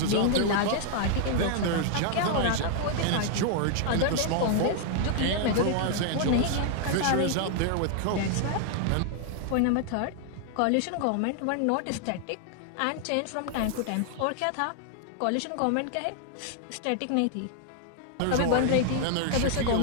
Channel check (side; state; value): both; different; correlation 0.00